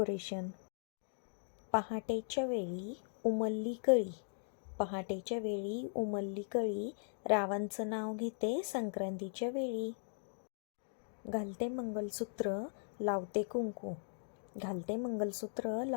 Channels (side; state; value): right; silent; digital silence